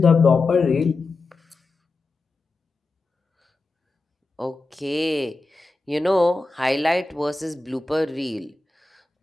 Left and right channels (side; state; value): right; quieter; 3.4 dB